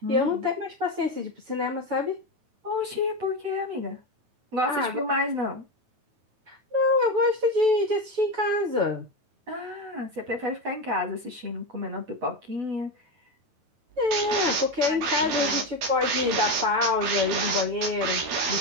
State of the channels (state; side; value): late; left; 9.2 ms